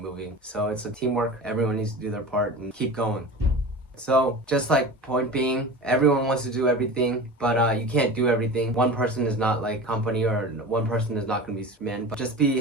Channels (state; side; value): normal; both; correlation 0.33